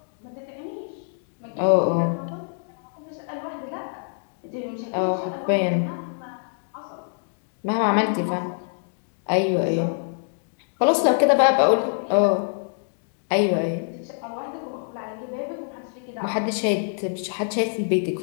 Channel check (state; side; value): silent; right; digital silence